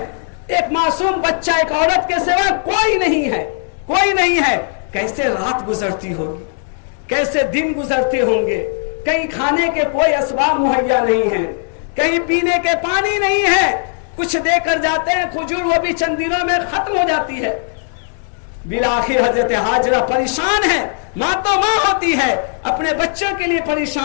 ایک معصوم بچہ ایک عورت کے سوا کوئی نہیں ہے، کوئی نہیں ہے. کیسے رات گزرتی ہوگی، کیسے دن گزرتے ہوں گے. کہیں کھانے کے کوئی اسباب مہیا نہیں ہیں، کہیں پینے کے پانی نہیں ہے. کچھ دے کر جاتے ہیں کھجور، وہ بھی چند دنوں میں ختم ہو جاتی ہے. بالآخر حضرت ہاجرہ پریشان ہے. ماں تو ماں ہوتی ہے، اپنے بچوں کے لیے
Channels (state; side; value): silent; right; digital silence